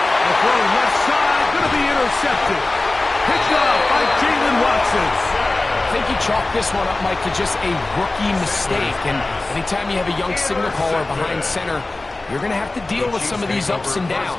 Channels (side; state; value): right; quieter; 3.0 dB